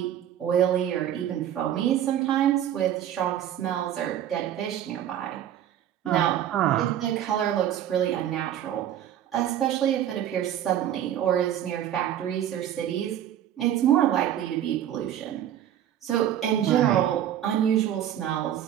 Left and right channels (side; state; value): left; quieter; 10.8 dB